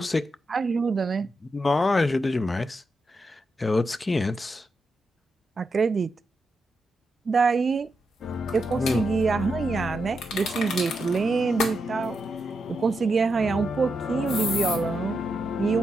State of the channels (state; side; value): normal; both; correlation 0.85